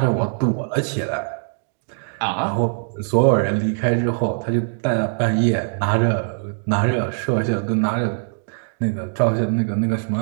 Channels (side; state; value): left; silent; digital silence